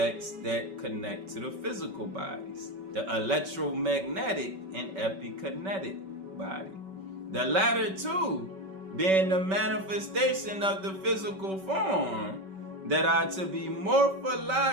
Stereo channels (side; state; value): left; late; 5.2 ms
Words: that connect to the physical bodies, the electromagnetic and epikinetic body. The latter 2 being the manifestation of the physical form that are to be